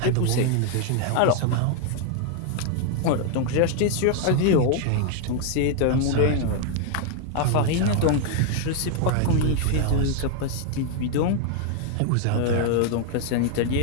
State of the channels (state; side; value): different; both; correlation 0.00